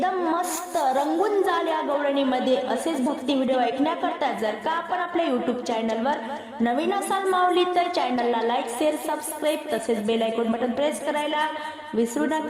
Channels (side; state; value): both; identical; correlation 1.00